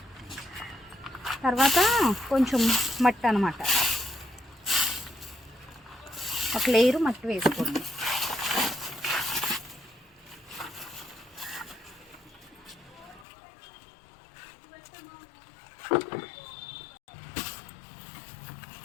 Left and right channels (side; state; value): right; drops out; at 13.2 s